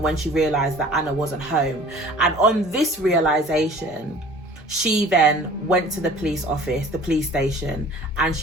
when she realised that Anna wasn't home. And on this realisation, she then went to the police station, and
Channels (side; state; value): both; normal; correlation 0.47